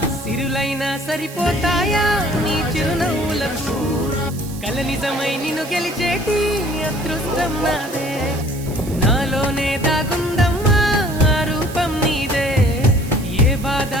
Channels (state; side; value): noise; right; hiss, 16 dB below the sound